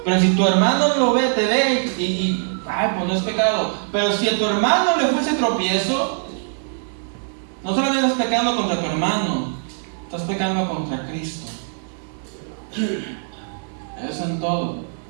Pero si tu hermano lo ve, te ve pues no es pecado. Pero si a tu hermano le fuese tropiezo, no solamente estás pecando contra tu hermano, estás pecando contra Cristo. Eso en todo.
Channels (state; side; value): silent; left; digital silence